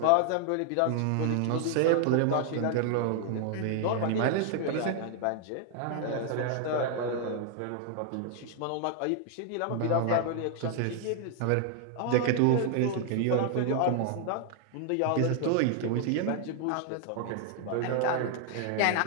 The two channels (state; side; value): different; both; correlation 0.00